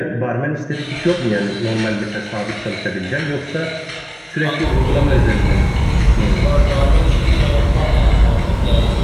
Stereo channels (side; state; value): both; identical; correlation 1.00